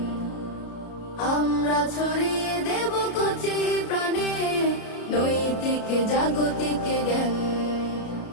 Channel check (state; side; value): late; right; 33 ms